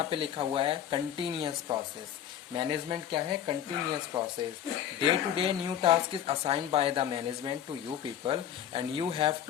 पे लिखा हुआ है कंटिन्यूअस प्रोसेस. मैनेजमेंट क्या है? Continuous process. Day to day new task is assigned by the management to you people and you have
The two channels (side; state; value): right; quieter; 10.1 dB